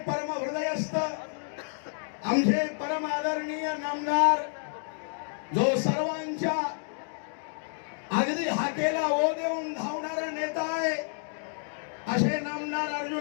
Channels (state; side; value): silent; right; 58 dB below the other